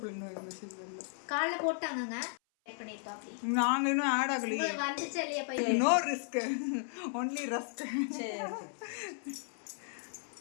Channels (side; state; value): right; silent; 54 dB below the other